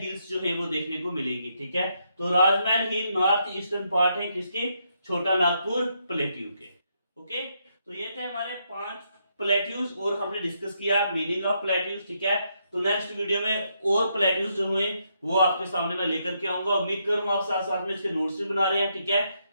जो है वो देखने को मिलेगी। ठीक है, तो राजमहल हिल नॉर्थ ईस्टर्न पार्ट है किसके? छोटा नागपुर प्लेट्यू के। ओके, तो ये थे हमारे 5 प्लेट्यूज और हमने डिस्कस किया मीनिंग ऑफ प्लेट्यूज। ठीक है, तो नेक्स्ट वीडियो में और प्लेट्यूज जो हुए वो आपके सामने मैं लेकर के आऊंगा। उम्मीद करूंगा आप साथ साथ में इसके नोट्स भी बना रहे हैं। ठीक है,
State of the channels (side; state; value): both; inverted; correlation -0.78